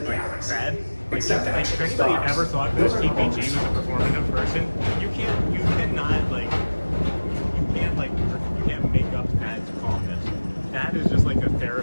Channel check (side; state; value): both; inverted; correlation -1.00